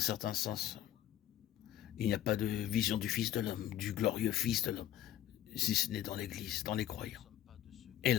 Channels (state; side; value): quieter; right; 12.3 dB